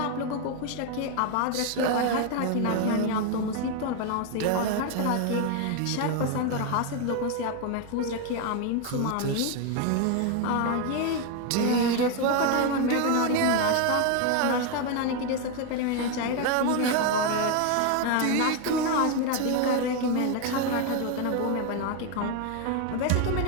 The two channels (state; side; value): different; both; correlation 0.01